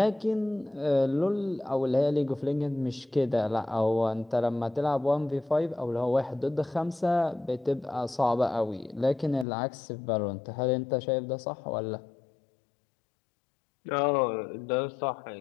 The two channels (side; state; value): right; drops out; at 9.5 s